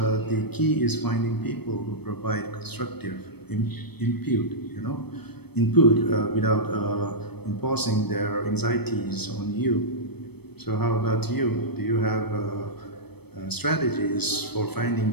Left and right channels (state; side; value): late; right; 0.97 ms